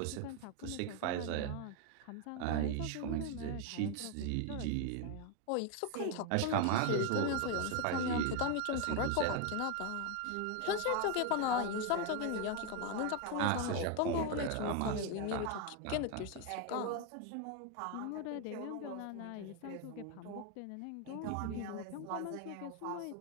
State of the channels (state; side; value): different; both; correlation 0.01